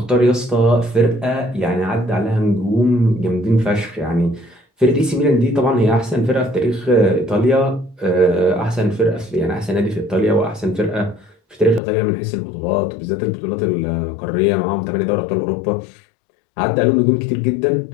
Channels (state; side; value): drops out; right; at 11.8 s